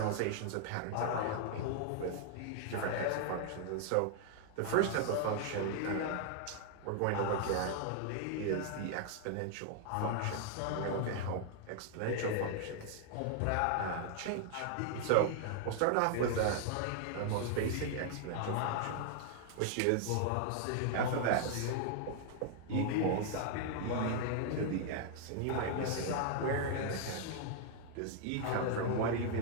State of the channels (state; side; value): different; both; correlation 0.00